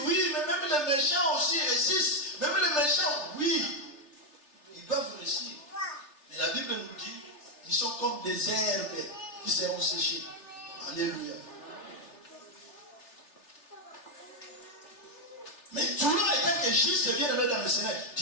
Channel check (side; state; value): right; late; 3.3 ms